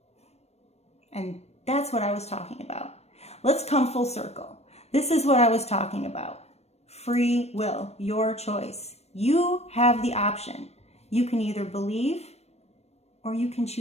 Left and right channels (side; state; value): right; late; 0.31 ms